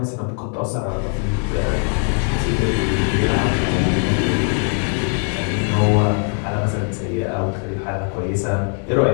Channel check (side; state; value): right; quieter; 37.9 dB